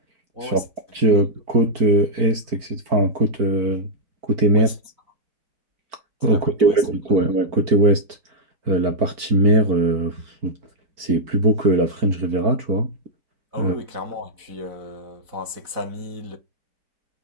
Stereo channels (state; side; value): late; left; 4.5 ms